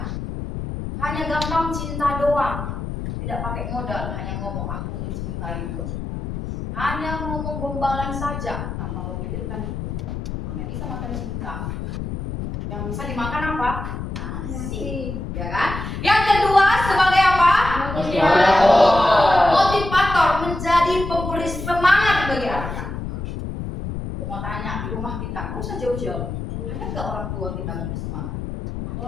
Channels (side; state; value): left; noise; rumble, 6 dB below the sound